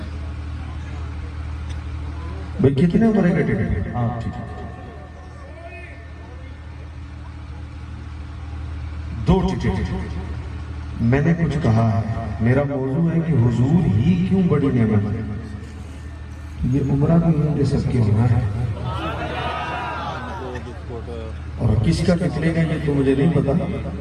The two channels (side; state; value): both; identical; correlation 1.00